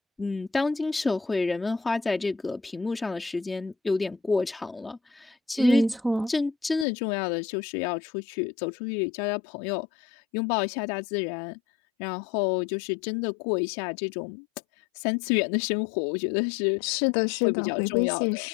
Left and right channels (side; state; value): right; drops out; at 6.9 s